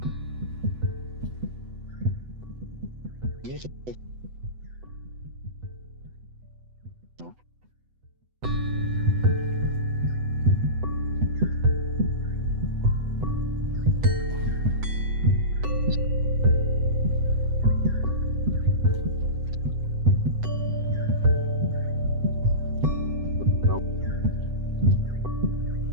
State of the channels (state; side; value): late; left; 8.0 ms